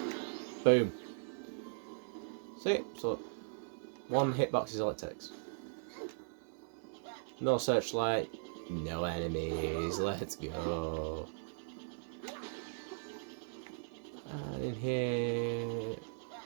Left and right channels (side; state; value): left; silent; 52 dB below the other